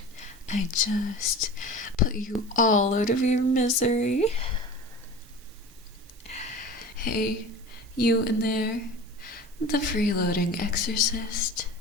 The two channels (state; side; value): normal; both; correlation 0.35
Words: I just put you all out of your misery? Hey, you in there, the freeloading exorcist.